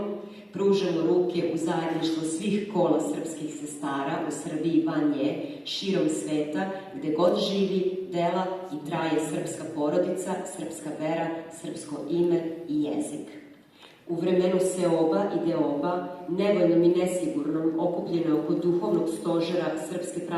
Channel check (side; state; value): both; identical; correlation 1.00